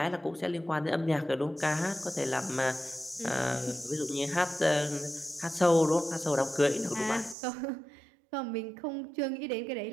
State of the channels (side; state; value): left; drops out; at 7.4 s